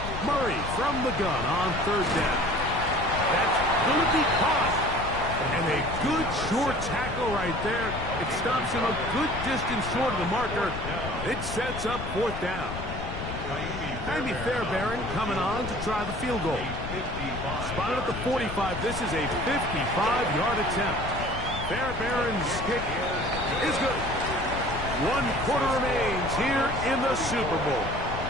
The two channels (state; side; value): noise; left; rumble, 7 dB below the sound